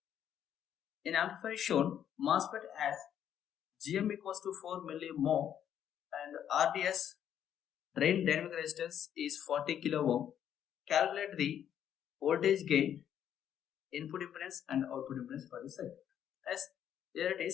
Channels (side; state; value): right; quieter; 9.7 dB